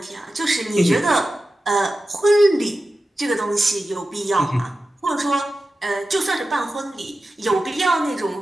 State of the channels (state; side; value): normal; both; correlation 0.93